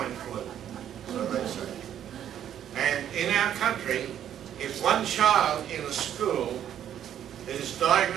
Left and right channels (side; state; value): left; quieter; 10.2 dB